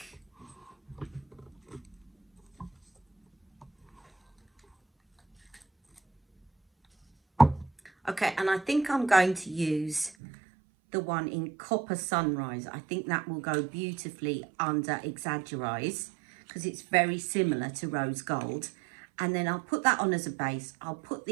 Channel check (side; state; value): left; drops out; at 10.2 s